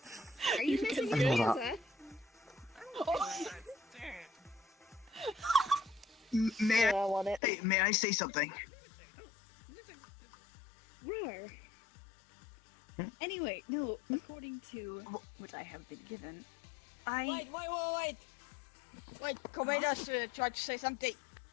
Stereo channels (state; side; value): drops out; right; at 7.4 s